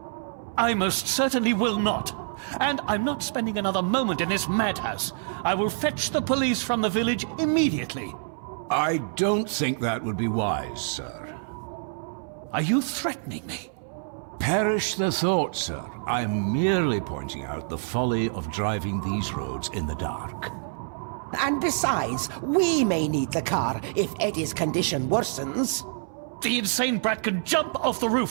I most certainly will not. And I'm not spending another moment in this madhouse. I will fetch the police from the village immediately. I don't think that would be wise, sir. Are you threatening me? Perish the thought, sir. I'm merely pointing out the folly of driving these roads in the dark. And besides, we may need the car if Eddie's condition worsens. The insane brat can jump off the roof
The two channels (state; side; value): silent; left; 60 dB below the other